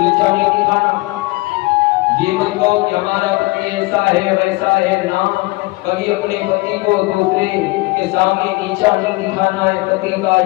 नहीं दिखाना। ये मत कहो कि हमारा पति ऐसा है वैसा है, ना, कभी अपने पति को दूसरे के सामने नीचा नहीं दिखाना है, पति का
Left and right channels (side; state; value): right; quieter; 23.3 dB